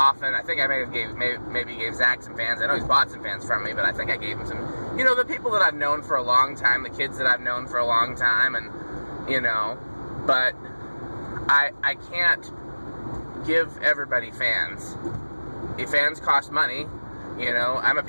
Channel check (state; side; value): inverted; both; correlation -1.00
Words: I think I maybe gave Zach some fans. I know he's bought some fans from me, but I think I gave him some. You know, the people that I've known for a long time, the kids that I've known for a long time, and, you know, but I can't give everybody fans. If fans cost money, you know, I'm a